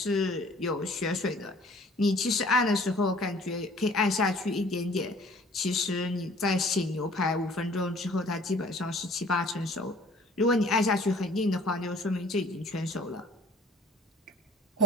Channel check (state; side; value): normal; both; correlation 0.53